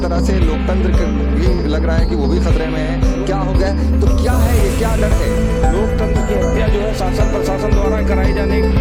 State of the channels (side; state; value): both; identical; correlation 1.00